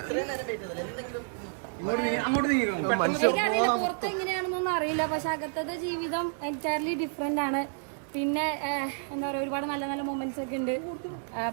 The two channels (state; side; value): silent; left; digital silence